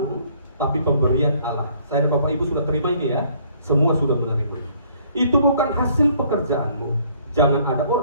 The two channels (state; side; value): inverted; both; correlation -0.62